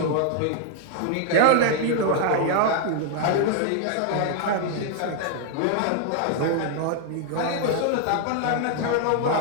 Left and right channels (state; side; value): different; both; correlation 0.00